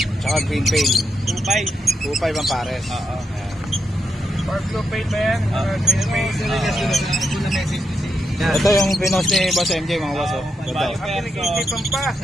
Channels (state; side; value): normal; both; correlation 0.83